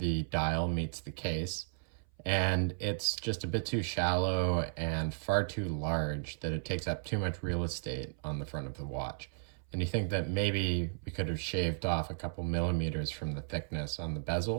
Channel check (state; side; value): silent; left; 55 dB below the other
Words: dial meets the case. And it's just a bit too shallow and far too large that it takes up too much real estate on the front of the watch. And you think that maybe we could have shaved off a couple millimeters from the thickness on the